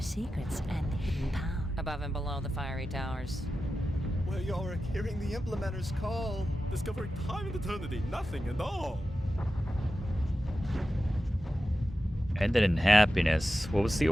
secrets and hidden power. Above and below the fiery towers. Well, you're hearing the implementer's call. Discovering time and eternity, nothing at all. Ended in happiness. What was the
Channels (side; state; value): both; normal; correlation 0.92